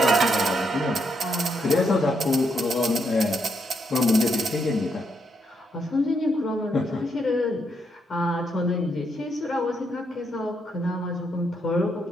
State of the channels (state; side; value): normal; both; correlation 0.78